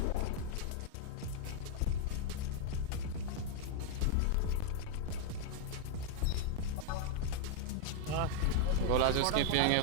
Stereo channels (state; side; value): different; both; correlation 0.00